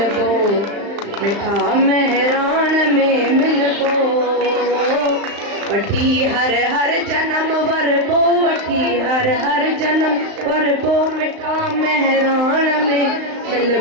मिठा मेहराण में मिलबो। वठी हर हर जन्म वर पो, वठी हर हर जन्म वर पो, मिठा मेहराण में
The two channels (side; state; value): left; late; 35 ms